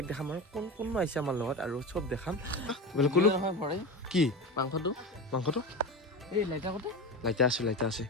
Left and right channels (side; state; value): both; normal; correlation 0.24